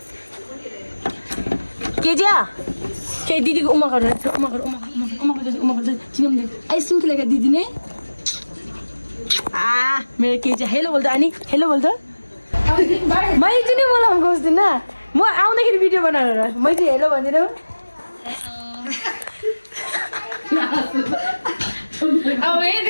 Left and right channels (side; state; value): both; inverted; correlation -1.00